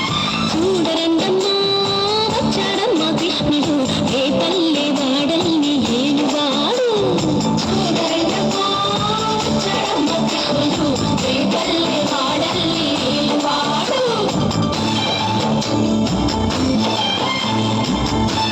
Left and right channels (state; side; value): identical; both; correlation 1.00